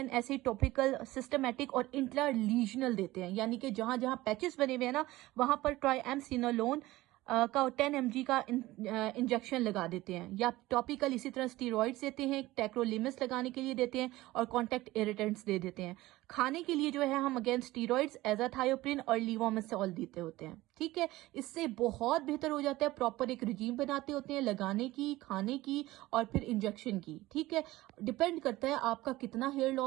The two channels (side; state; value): left; quieter; 17.9 dB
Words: ऐसे टॉपिकल, सिस्टमेटिक और इंट्रालीजनल देते हैं, यानी कि जहां जहां पैचेस बने हुए हैं ना, वहां पर ट्राइएमसिनोलोन का 10 mg का इंजेक्शन लगा देते हैं, या टॉपिकल इसी तरह स्टीरॉइड्स देते हैं, टेक्रोलिमस लगाने के लिए देते हैं, और कॉन्टैक्ट इरिटेंट्स दे देते हैं। खाने के लिए जो है हम अगेन स्टीरॉइड्स, एजाथायोप्रिन और लीवोमेसोल देते होते हैं। ठीक है, इससे बहुत बेहतर हो जाता है। प्रॉपर एक रिजीम बनाते होते हैं लगाने की, खाने की और फिर इंजेक्शन की। ठीक है, डिपेंड करता है आपका कितना हेयर